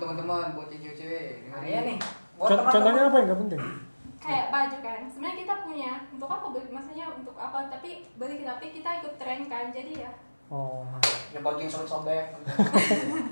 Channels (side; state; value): both; inverted; correlation -1.00